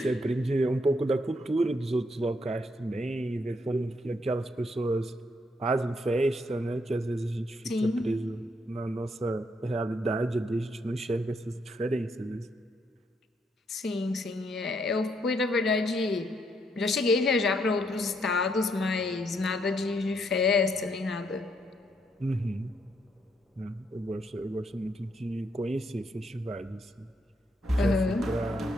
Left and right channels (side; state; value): both; normal; correlation 0.74